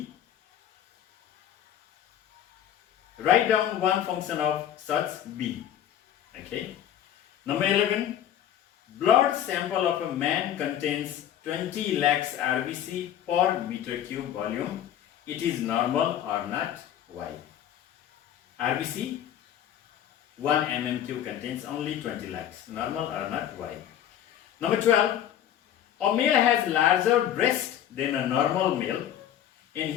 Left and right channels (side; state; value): right; quieter; 10.7 dB